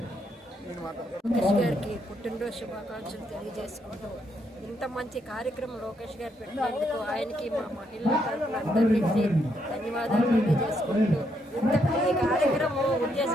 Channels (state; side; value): normal; both; correlation 0.76